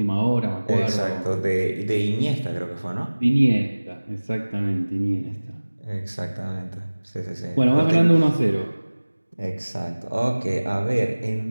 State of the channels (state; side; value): inverted; both; correlation -1.00